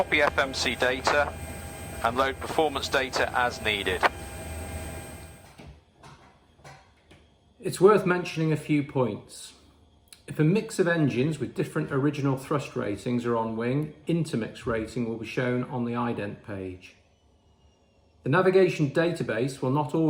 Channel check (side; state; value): both; identical; correlation 1.00